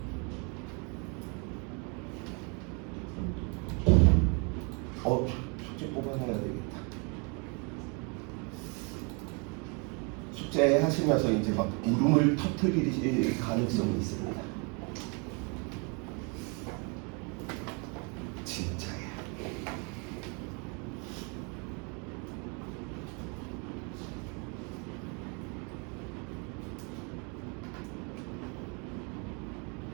숙제 뽑아내야 되겠다. 숙제 하시면서 이제 막 울음을 터뜨릴 가능성이 있습니다. 진짜야.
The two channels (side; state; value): left; quieter; 33.7 dB